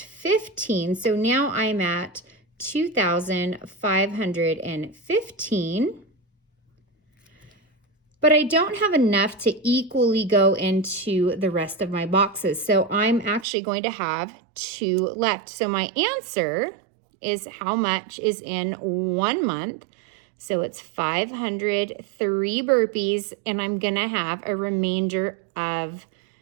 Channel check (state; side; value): drops out; left; at 13.5 s